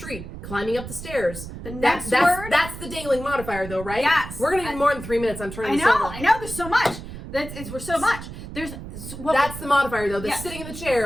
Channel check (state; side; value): noise; right; rumble, 11 dB below the sound